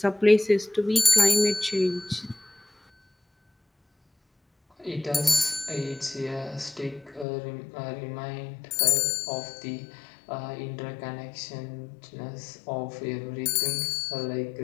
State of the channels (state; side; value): drops out; right; at 7.2 s